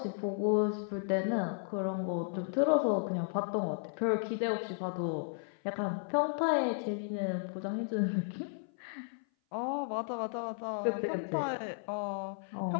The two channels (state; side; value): silent; right; 55 dB below the other